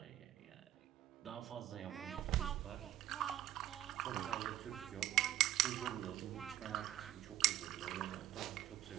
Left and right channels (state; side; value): quieter; left; 12.9 dB